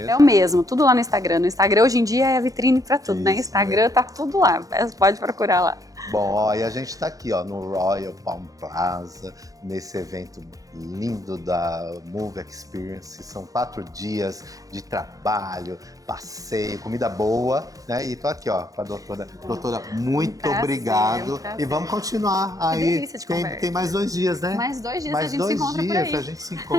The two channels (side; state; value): left; late; 0.17 ms